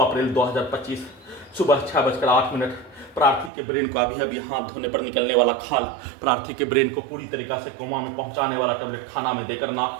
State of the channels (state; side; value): drops out; left; at 3.5 s